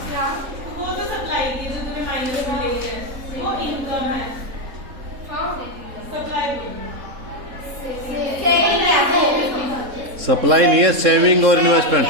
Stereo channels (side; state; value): left; late; 3.7 ms